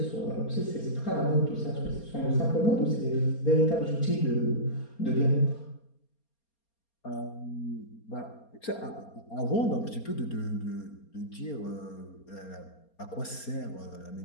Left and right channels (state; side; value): late; right; 4.3 ms